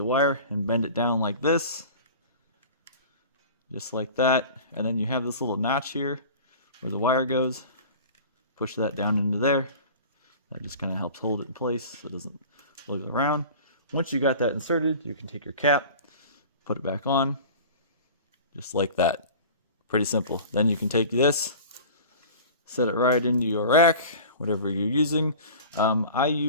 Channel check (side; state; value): both; inverted; correlation -0.39